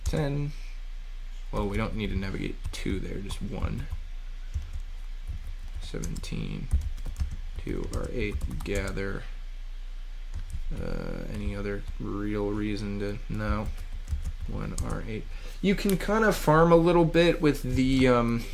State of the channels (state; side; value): identical; both; correlation 1.00